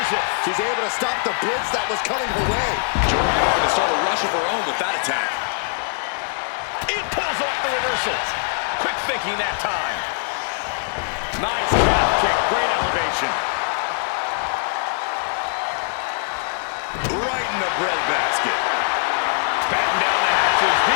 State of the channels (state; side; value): silent; right; digital silence